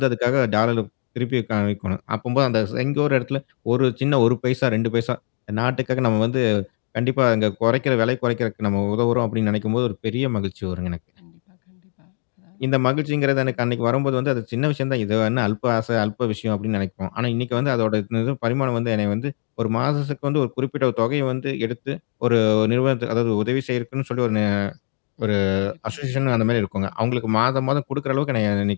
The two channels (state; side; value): silent; right; digital silence